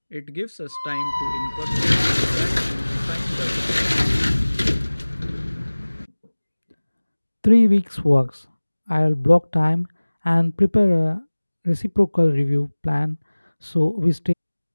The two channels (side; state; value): both; inverted; correlation -1.00